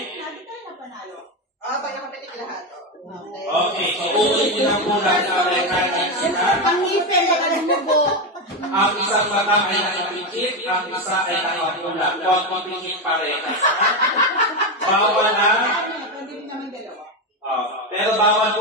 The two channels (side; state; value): both; normal; correlation 0.12